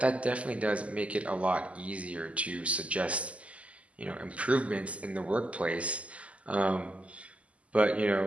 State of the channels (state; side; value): late; left; 0.064 ms